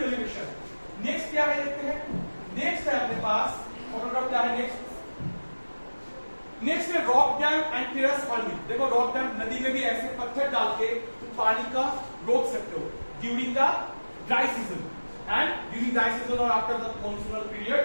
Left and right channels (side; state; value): both; inverted; correlation -1.00